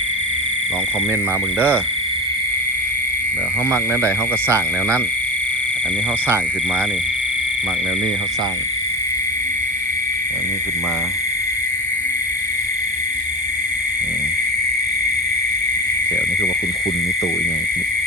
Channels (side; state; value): both; normal; correlation 0.24